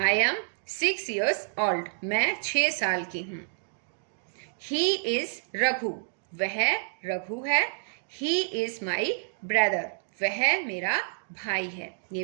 एम 6 years old, मैं 6 साल की हूं। ही इज रघु, वह रघु है। ही इज माई ब्रदर, वह मेरा भाई है। ये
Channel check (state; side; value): silent; left; digital silence